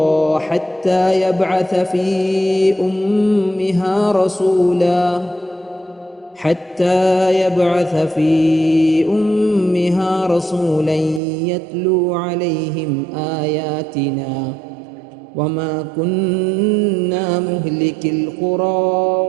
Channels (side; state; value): left; drops out; at 11.2 s